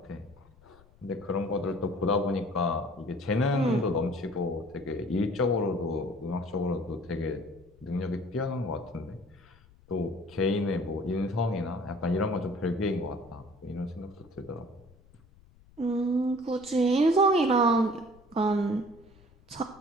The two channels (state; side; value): noise; left; rumble, 27 dB below the sound